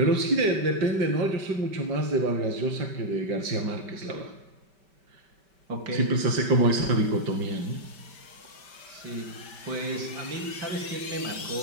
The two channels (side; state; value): left; late; 5.2 ms